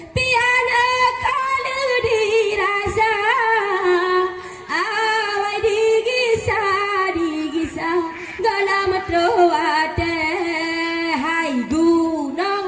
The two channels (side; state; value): both; identical; correlation 1.00